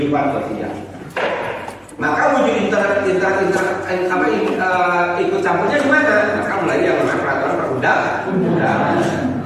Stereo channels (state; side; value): identical; both; correlation 1.00